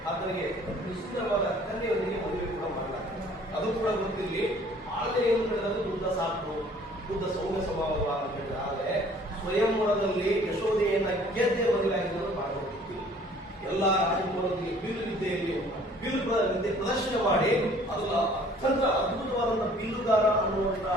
ಆತನಿಗೆ ಸುಂದರವಾದ ಕನ್ಯೆಯೊಂದಿಗೆ ಮದುವೆ ಕೂಡ ಮಾಡಲಾಗ್ತದೆ. ಅದು ಕೂಡ ಗೊತ್ತಿರಲಿ. ಆದ್ರೆ ಏನು ಹೇಳಿದ್ರೆ ಬುದ್ಧ ಸಾಕು, ಬುದ್ಧ ಸೌಮ್ಯ ಸ್ವಭಾವ ಅಂತ ಹೇಳಿದ್ರೆ. ಆದ್ರೆ ಸ್ವಯಂವರದಲ್ಲಿ ಯಶೋಧೆಯನ್ನ ಗೆದ್ದೆ ಬದಲಾಗಿದ್ದರು ಮಾಡಬಹುದು. ಎಲ್ಲ ರಾಜಕುಮಾರರಿಗೆ ಬಿಲ್ಲು ವಿದ್ಯೆಯಲ್ಲಿ ವಿದ್ಯೆ ಪ್ರದರ್ಶನ ಮಾಡಿ ಅದನ್ನ ಅತ್ಯಂತ ಅದ್ಭುತವಾದಂತಹ ಬಿಲ್ಲುಗಾರ ಅನ್ನುವಂತ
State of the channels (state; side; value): normal; both; correlation 0.55